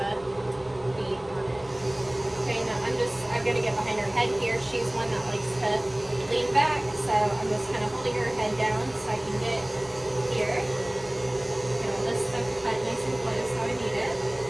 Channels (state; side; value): noise; right; hum, 26 dB below the sound